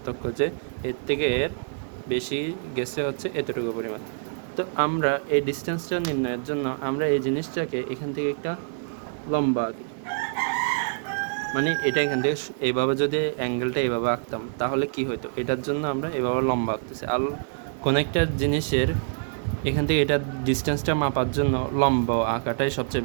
যে এর থেকে এর বেশি গেছে হচ্ছে এতটুকু পরিমাণ। তো আমরা এই ডিস্টেন্সটা নির্ণয়ের জন্য আমরা এই জিনিসটাকে এখান থেকে একটা লম্বা আঁকি, মানে এটা এখান থেকে এইভাবে যদি অ্যাঙ্গেলটা এইভাবে আঁকতাম তাহলে কি হতো, এটার জন্য আমরা এইভাবে লম্বা আঁকতেছি। আর কোনো একটা জিনিসের এখান থেকে এটার ডিস্টেন্সটা মাপার জন্য লম্বা আঁকাটাই সবচেয়ে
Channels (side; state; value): left; silent; digital silence